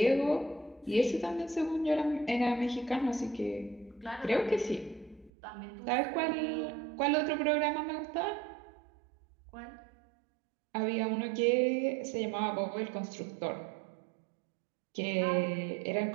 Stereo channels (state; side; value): drops out; left; at 5.3 s